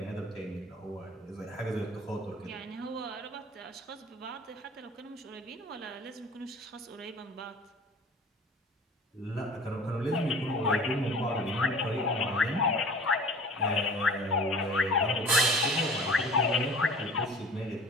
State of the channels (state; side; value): normal; both; correlation 0.43